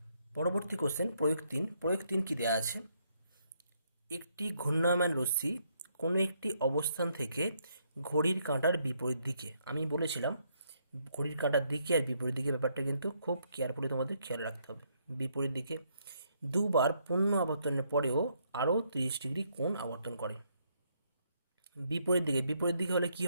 পরবর্তী কোশ্চেন প্রয়োগ 3 কি দেওয়া আছে, একটি ঘূর্ণায়মান রশ্মি কোনো একটি অবস্থান থেকে ঘড়ির কাঁটার বিপরীত দিকে, আমি বলেছিলাম ঘড়ির কাঁটার দিকে আর বিপরীত দিকে ব্যাপারটা কিন্তু খুব কেয়ারফুলি তোমাদের খেয়াল রাখতে হবে। বিপরীত দিকে দুবার পূর্ণ আবর্তনের পরেও আরও 30 ডিগ্রি কোণ আবর্তন করে। বিপরীত দিকে হলে কি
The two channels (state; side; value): inverted; both; correlation -0.73